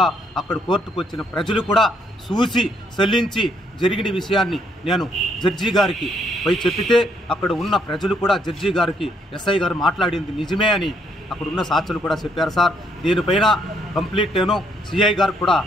అక్కడ కోర్టుకు వచ్చిన ప్రజలు కూడా చూసి చెల్లించి జరిగిన విషయాన్ని నేను జడ్జి గారికి పోయి చెప్పితే అక్కడ ఉన్న ప్రజలు కూడా జడ్జి గారికి ఎస్ఐ గారు మాట్లాడింది నిజమే అని అక్కడ ఉన్న సాక్షులు కూడా చెప్పారు సార్. దీనిపైన కంప్లీట్ నేను సిఐ గారికి కూడా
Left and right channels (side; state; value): both; normal; correlation 0.71